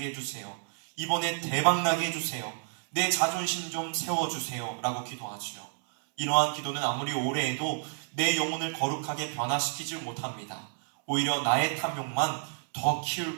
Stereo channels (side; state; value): left; silent; 58 dB below the other